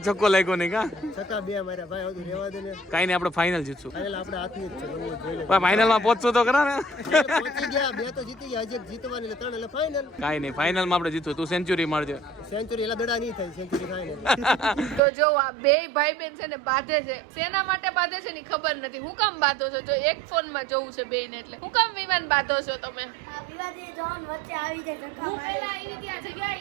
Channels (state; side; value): drops out; left; at 15.0 s